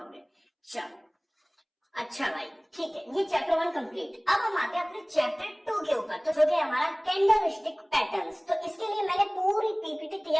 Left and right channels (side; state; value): both; identical; correlation 1.00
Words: चलो अच्छा भाई, ठीक है, ये चैप्टर 1 कंप्लीट। अब हम आते हैं अपने चैप्टर 2 के ऊपर, तो जो कि हमारा कैंडलस्टिक पैटर्न्स। तो इसके लिए मैंने पूरी पीपीटी